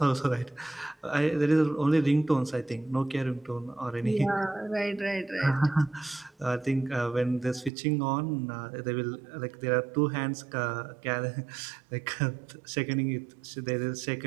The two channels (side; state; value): left; drops out; at 7.7 s